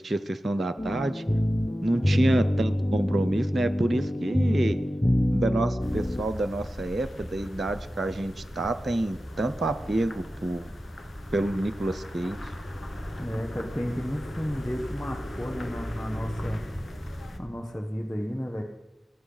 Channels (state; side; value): normal; both; correlation 0.94